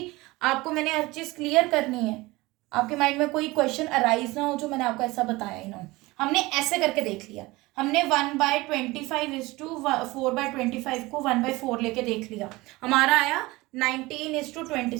आपको मैंने हर चीज क्लियर करनी है, आपके माइंड में कोई क्वेश्चन अराइज ना हो जो मैंने आपको ऐसा बताया ही ना हो। हमने ऐसे करके देख लिया, हमने 1/25 को 1/4 लेके देख लिया, हमारा आया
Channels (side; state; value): left; quieter; 21.1 dB